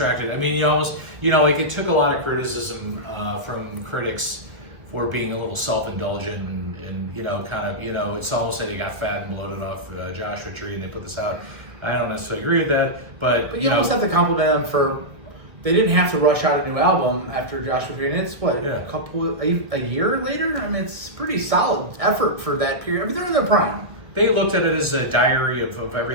I mean, you almost, like it took a lot of criticism from critics for being a little self-indulgent and it's almost like they got fat and bloated off Joshua Tree and they put this out. I don't necessarily agree with that, but you almost have to compliment them for they didn't have to rush out a new album after Joshua Tree. And it's a year later. I mean, it's pretty solid effort for that period. I mean, they're in their prime. They looked at it as a diary of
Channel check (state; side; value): late; left; 1.7 ms